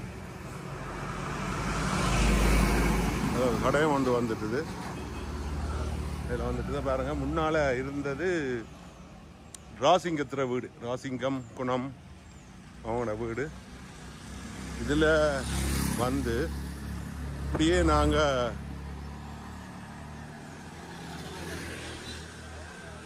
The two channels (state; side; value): identical; both; correlation 1.00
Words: கடையும் கொண்டு வந்துட்டுது. இதில் வந்துட்டு தான் பாருங்க, முன்னால் இருந்தது ராசிங்கத்துற வீடு. ராசிங்கம் குணம் அவங்களோட வீடு. இதில் வந்து இப்படியே நாங்கள்